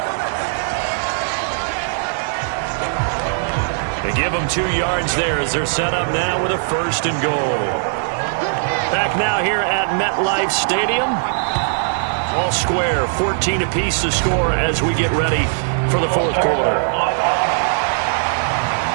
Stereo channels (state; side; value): silent; left; digital silence